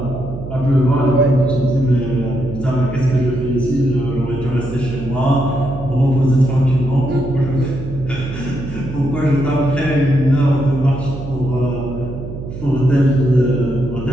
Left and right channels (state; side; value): noise; right; hum, 9 dB below the sound